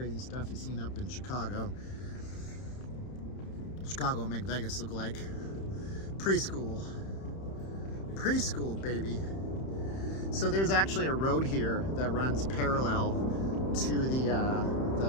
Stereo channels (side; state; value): right; late; 31 ms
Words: stuff he's seen up in Chicago. Chicago will make Vegas look like preschool. Preschool, baby. So there's actually a road here that runs parallel to the